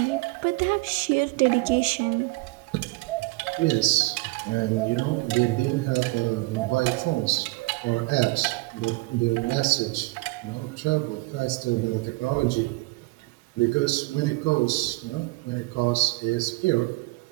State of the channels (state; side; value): quieter; left; 24.0 dB